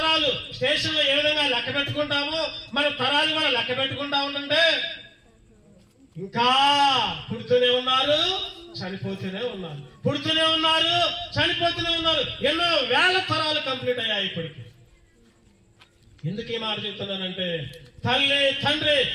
స్టేషన్లో ఏ విధంగా లెక్క పెట్టుకుంటామో మన తరాలు కూడా లెక్క పెట్టుకుంటా ఉంటుంటే ఇంకా పుడుతూనే ఉన్నారు, చనిపోతూనే ఉన్నారు, పుడుతూనే ఉన్నారు, చనిపోతూనే ఉన్నారు. ఎన్నో వేల తరాలు కంప్లీట్ అయ్యాయి ఇప్పటికి. ఎందుకు ఈ మాట చెప్తున్నానంటే, తల్లి తండ్రి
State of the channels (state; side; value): identical; both; correlation 1.00